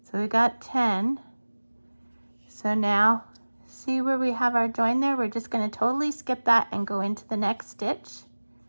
So we got 10. So now, see where we have our join there? We're just going to totally skip that and go into the next stitch.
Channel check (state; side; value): inverted; both; correlation -1.00